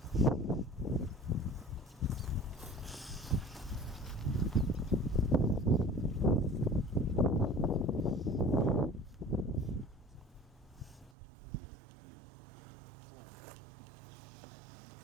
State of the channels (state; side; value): drops out; left; at 11.1 s